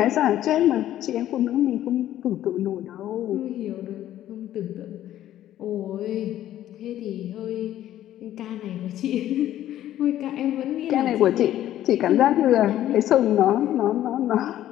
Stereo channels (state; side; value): quieter; right; 12.6 dB